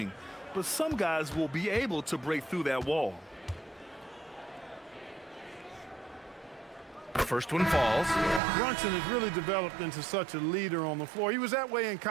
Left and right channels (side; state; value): left; drops out; at 8.4 s